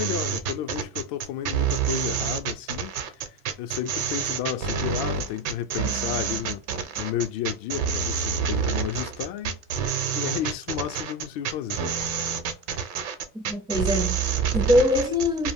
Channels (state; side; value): normal; both; correlation 0.22